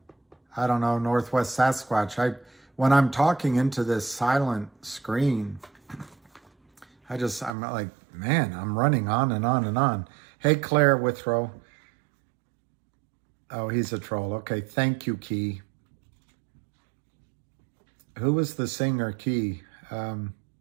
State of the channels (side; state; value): left; drops out; at 7.5 s